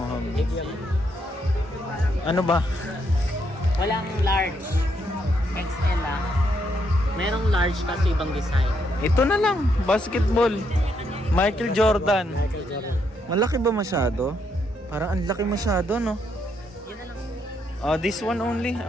Medium. Ano ba? Walang large. XL lang. Merong large kasi ibang design. Ito na lang, basketball. Michael Jordan. Michael Jordan. Malaki ba masyado? Parang ang laki masyado, no? Yan na lang. This one only.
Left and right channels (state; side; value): normal; both; correlation 0.76